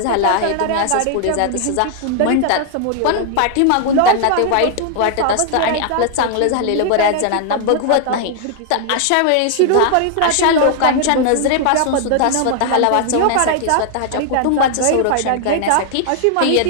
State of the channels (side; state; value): both; different; correlation 0.00